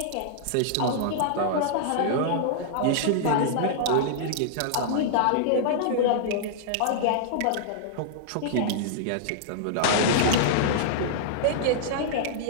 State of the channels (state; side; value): different; both; correlation -0.02